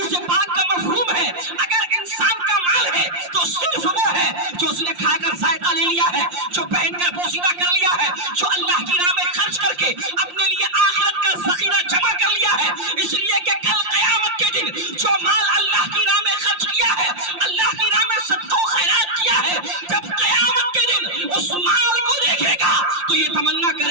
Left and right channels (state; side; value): late; left; 5.7 ms